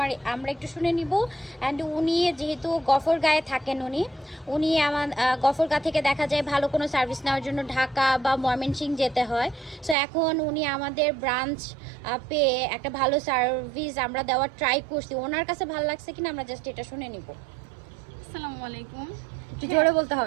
আমরা একটু শুনে নিব। অ্যান্ড উনি যেহেতু গফরগাঁয়ে থাকেন, উনি আমার গফরগাঁ থেকে দেখা যায় ভালো কোনো সার্ভিস নেওয়ার জন্য ঢাকা বা ময়মনসিংহ যেতে হয়। সো এখন উনি আমাদের ব্রাঞ্চ পেয়ে একটা ভালো সার্ভিস আমরা দেওয়ার ট্রাই করছি। ওনার কাছে ভালো লাগছে কিনা আমরা জাস্ট এটা শুনে নিব। আসসালামু আলাইকুম। একটু জোরে বলতে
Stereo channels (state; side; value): drops out; left; at 10.0 s